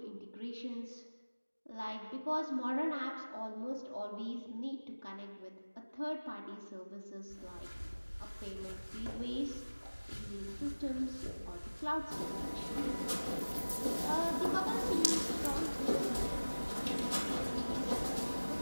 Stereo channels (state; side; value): inverted; both; correlation -1.00